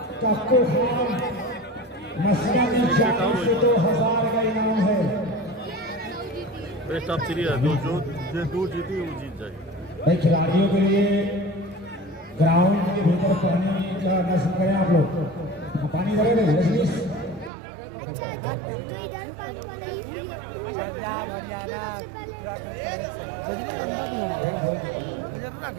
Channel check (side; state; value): left; drops out; at 17.5 s